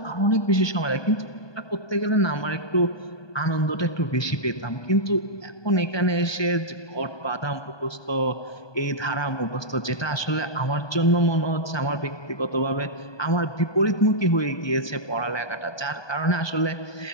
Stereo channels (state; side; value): late; right; 1.2 ms